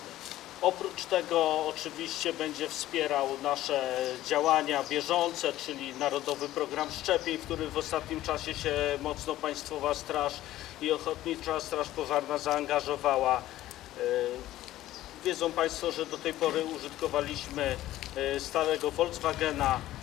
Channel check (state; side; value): quieter; right; 14.6 dB